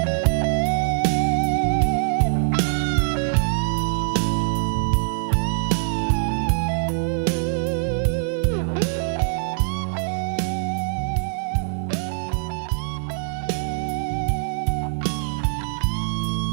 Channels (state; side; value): silent; left; digital silence